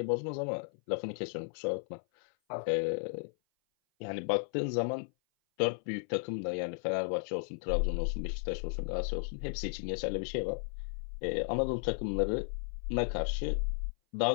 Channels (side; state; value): right; silent; 55 dB below the other